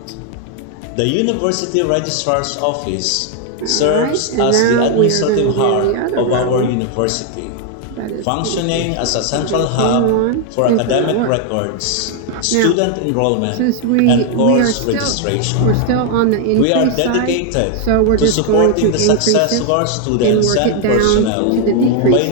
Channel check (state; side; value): different; both; correlation 0.00